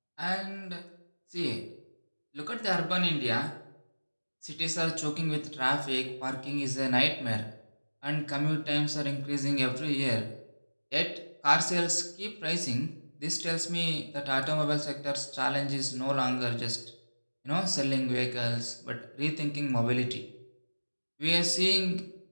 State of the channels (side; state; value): both; inverted; correlation -1.00